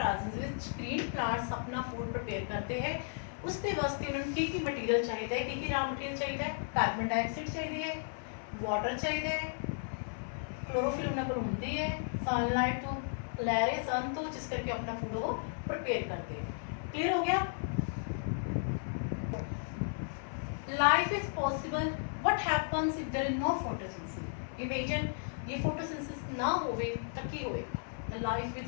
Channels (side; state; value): right; silent; 55 dB below the other